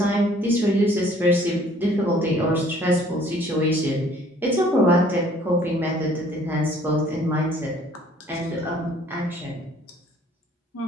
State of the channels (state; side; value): normal; both; correlation 0.57